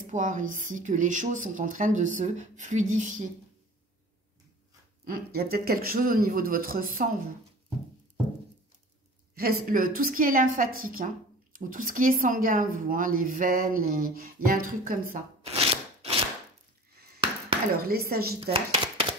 ici, que les choses sont en train de se fluidifier. Il y a peut-être quelque chose au niveau de votre sang, vous. Tout ce qui est lymphatique, hein, ou tout ce qui est sanguin, vous, hein, les veines, il y a un truc comme ça. Alors, les sagittaires,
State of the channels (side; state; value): both; normal; correlation 0.42